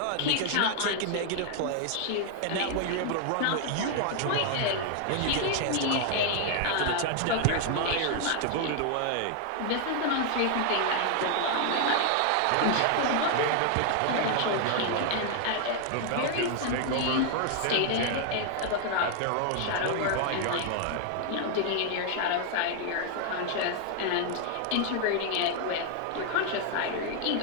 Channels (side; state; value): both; different; correlation 0.00